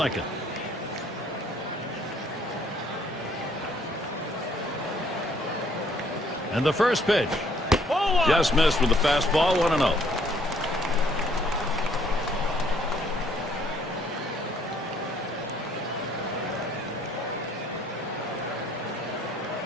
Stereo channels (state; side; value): normal; both; correlation 0.63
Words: And the first pitch. Just missed with the fastball. 1-0.